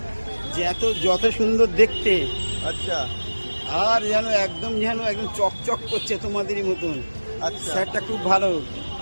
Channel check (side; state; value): both; inverted; correlation -1.00